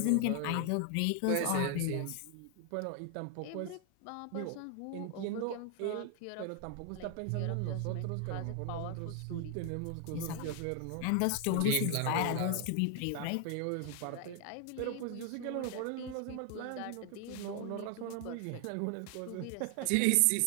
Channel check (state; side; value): different; both; correlation 0.00